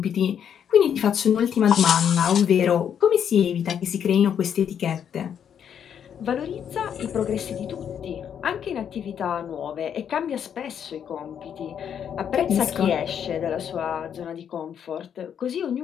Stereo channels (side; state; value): right; quieter; 8.5 dB